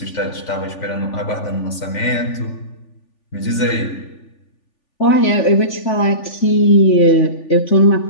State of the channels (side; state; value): right; late; 3.4 ms